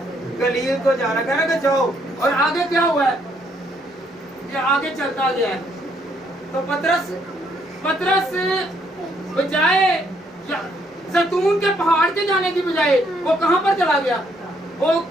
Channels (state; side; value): normal; both; correlation 0.70